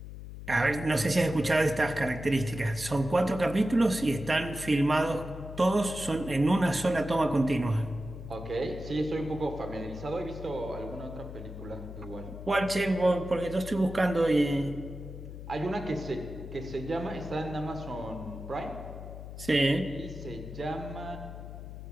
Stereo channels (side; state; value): left; noise; hum, 11 dB below the sound